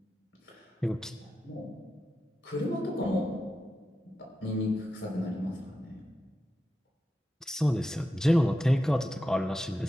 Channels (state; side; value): normal; both; correlation 0.90